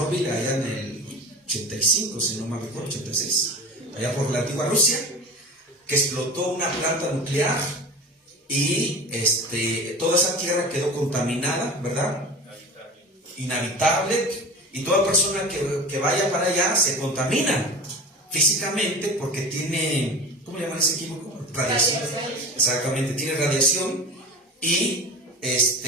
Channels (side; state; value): both; normal; correlation 0.32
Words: allá en el 85, si no me recuerdo, 86, allá por la antigua Rusia? Que explotó una planta nuclear y toda esa tierra quedó contaminada, ¿verdad? Inhabitable. Y toda persona que vaya para allá se contamina físicamente porque tiene, ¿cómo le llaman ese químico? Radiación. Exactamente, tiene radiación y